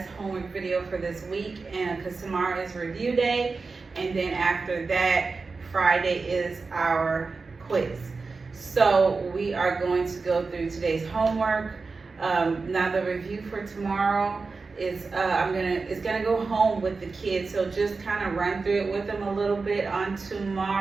homework video for this week, and because tomorrow is review day, and then after that, Friday is our quiz. So we are going to go through today's homework. Now the review for tomorrow is it's gonna go home with the kids, so just kind of run through it with them a little bit on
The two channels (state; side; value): quieter; left; 4.2 dB